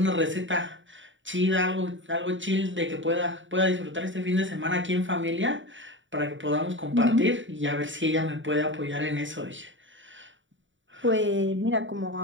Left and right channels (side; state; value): left; late; 0.55 ms